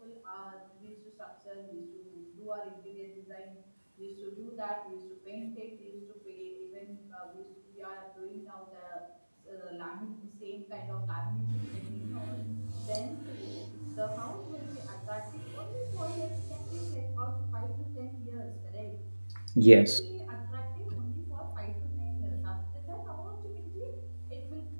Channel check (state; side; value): inverted; both; correlation -1.00